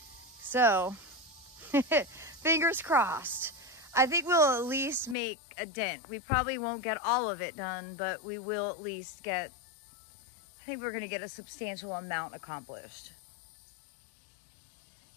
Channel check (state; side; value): drops out; right; at 5.2 s